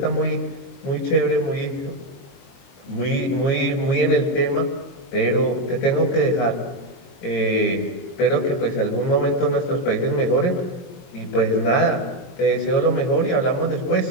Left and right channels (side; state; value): right; late; 22 ms